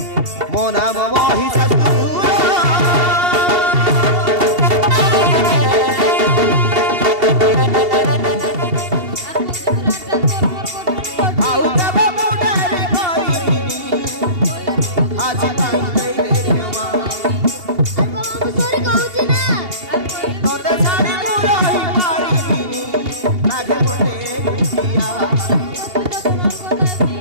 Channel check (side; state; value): left; late; 2.8 ms